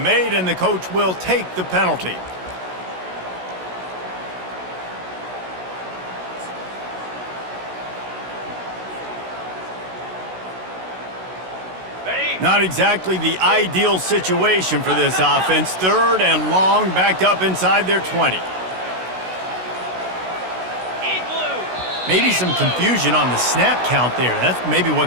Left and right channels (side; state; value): left; late; 16 ms